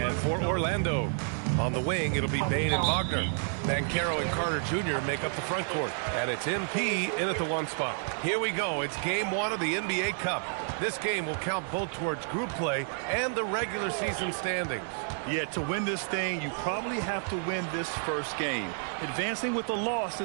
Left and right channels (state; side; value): silent; left; 55 dB below the other